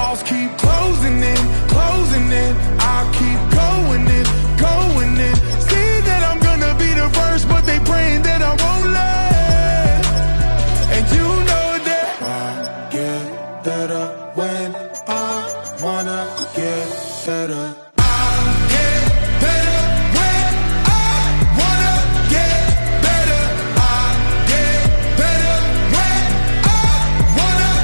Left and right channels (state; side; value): inverted; both; correlation -1.00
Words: keep closing in, closing in. I keep going in, going in. See that I'm gonna be the first, but they praying that I won't let. And you know that I get better when I wanna get better. I get better when I wanna get better. I get better when I wanna